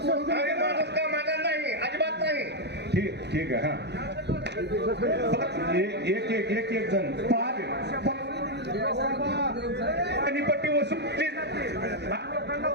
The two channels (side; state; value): left; late; 0.49 ms